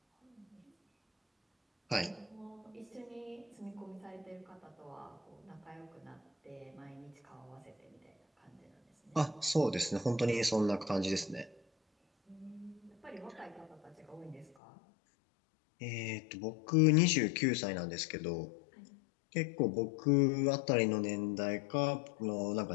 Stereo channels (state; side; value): drops out; right; at 14.6 s